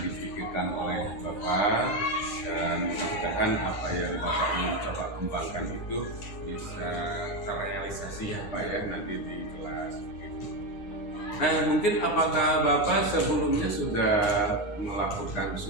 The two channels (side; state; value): right; late; 9.6 ms